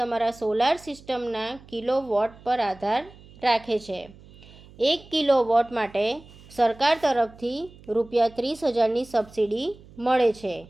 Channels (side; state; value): right; noise; hum, 22 dB below the sound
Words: સોલાર સિસ્ટમના કિલોવોટ પર આધાર રાખે છે। 1 કિલોવોટ માટે સરકાર તરફથી ₹30,000ની સબસિડી મળે છે।